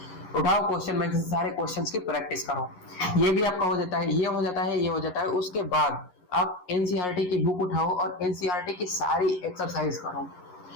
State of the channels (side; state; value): right; late; 11 ms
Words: उठाओ, क्वेश्चन बैंक से सारे क्वेश्चंस की प्रैक्टिस करो। ये भी आपका हो जाता है, ये हो जाता है, ये हो जाता है। उसके बाद आप एनसीईआरटी की बुक उठाओ और एनसीईआरटी की सारी एक्सरसाइज करो,